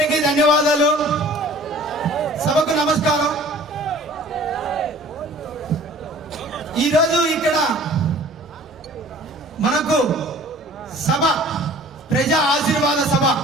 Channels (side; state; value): both; normal; correlation 0.49